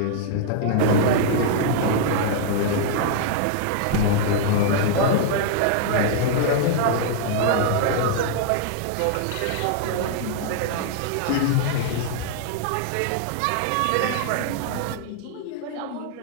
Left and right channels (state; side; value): different; both; correlation -0.01